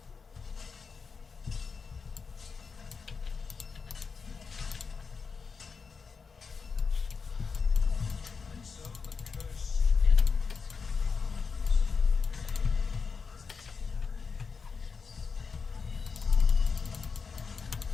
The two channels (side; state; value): right; quieter; 5.3 dB